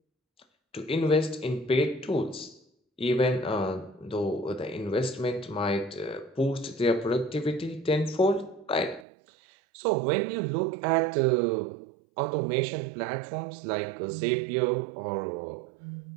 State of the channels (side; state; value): left; drops out; at 9.1 s